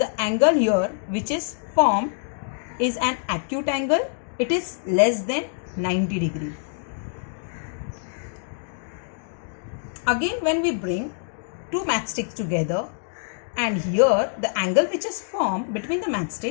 angle here which is formed is an acute angle, it is less than 90 degree. Again, when we bring two matchsticks together and here the angle which is formed between the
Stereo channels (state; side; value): silent; right; digital silence